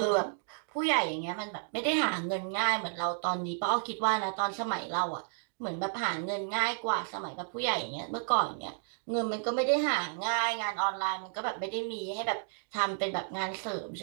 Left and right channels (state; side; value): silent; left; digital silence